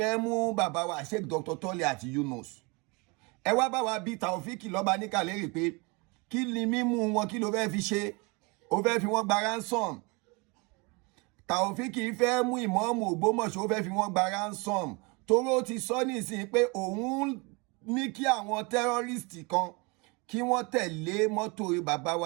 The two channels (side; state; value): left; quieter; 28.6 dB